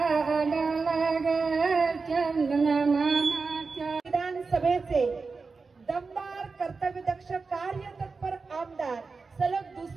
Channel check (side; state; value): left; quieter; 4.4 dB